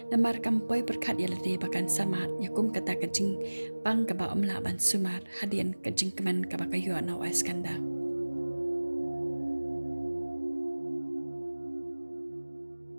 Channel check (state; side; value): inverted; both; correlation -1.00